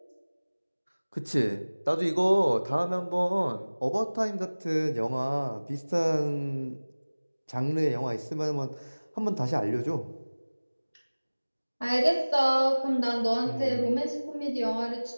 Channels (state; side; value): inverted; both; correlation -1.00